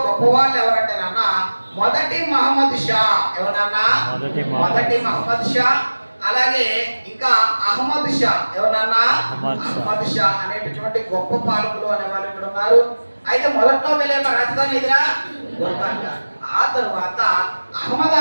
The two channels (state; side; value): inverted; both; correlation -1.00